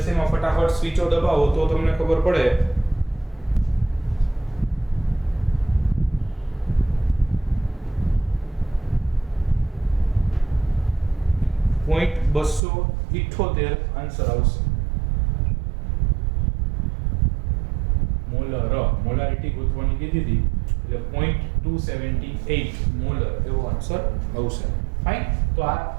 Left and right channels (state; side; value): drops out; left; at 12.6 s